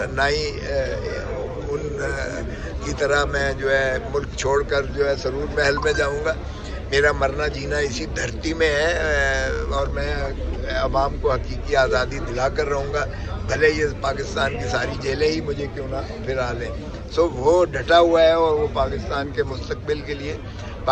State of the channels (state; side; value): identical; both; correlation 1.00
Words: نہ ہی ان کی طرح میں جو ہے ملک چھوڑ کر جو ہے سرور محل میں جاؤں گا. میرا مرنا جینا اسی دھرتی میں ہے اور میں عوام کو حقیقی آزادی دلا کر رہوں گا، بھلے یہ پاکستان کی ساری جیلیں ہی مجھے کیوں نہ پھرا لیں. وہ ڈٹا ہوا ہے اور وہ پاکستان کے مستقبل کے لیے،